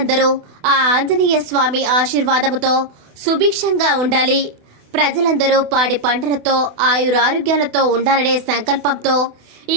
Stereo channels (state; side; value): late; left; 28 ms